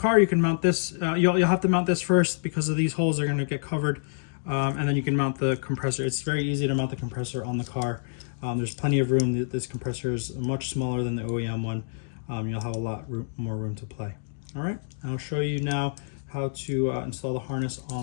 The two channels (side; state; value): right; silent; digital silence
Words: you can mount this. You'll have to mount this first because of these holes are going to get covered, and then you can mount the compressor. It's very easy to mount the compressor on the car. There's plenty of room. This compressor is much smaller than the OEM one. You'll have a lot more room to play. All right, I'll show you now how to install the harness